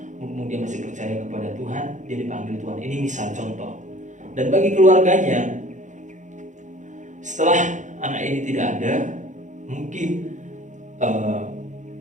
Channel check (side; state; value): left; late; 0.35 ms